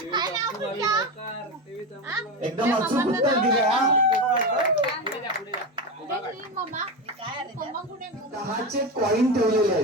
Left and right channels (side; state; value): both; normal; correlation 0.18